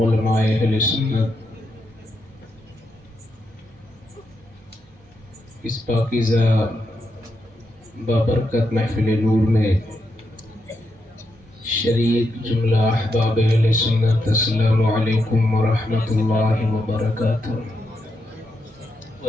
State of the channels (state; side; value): noise; right; hum, 29 dB below the sound